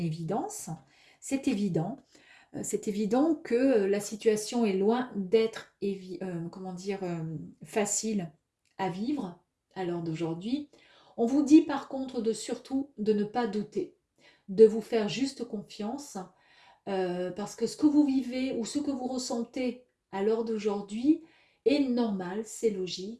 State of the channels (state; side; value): identical; both; correlation 1.00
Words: C'est évident. C'est évident que la situation est loin d'être facile à vivre à l'heure d'aujourd'hui. On vous dit par contre surtout de ne pas douter, de vous faire juste confiance, parce que ce que vous vivez ou ce que vous ressentez à l'heure d'aujourd'hui est normal, c'est